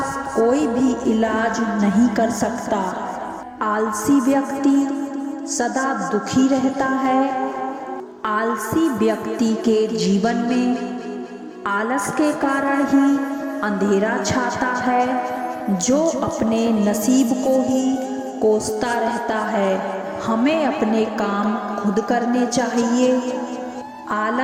कोई भी इलाज नहीं कर सकता। आलसी व्यक्ति सदा दुखी रहता है। आलसी व्यक्ति के जीवन में आलस के कारण ही अंधेरा छाता है, जो अपने नसीब को ही कोसता रहता है। हमें अपने काम खुद करने चाहिए।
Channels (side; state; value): both; identical; correlation 1.00